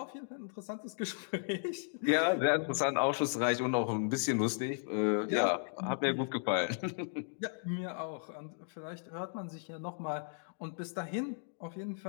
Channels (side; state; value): right; silent; digital silence